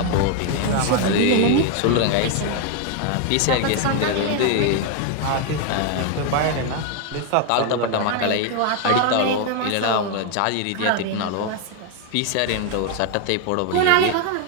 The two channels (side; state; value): both; different; correlation 0.01